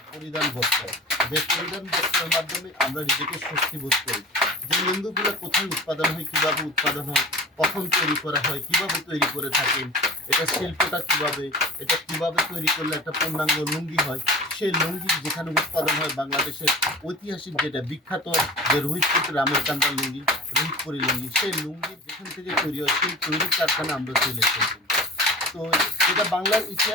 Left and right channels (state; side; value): normal; both; correlation 0.37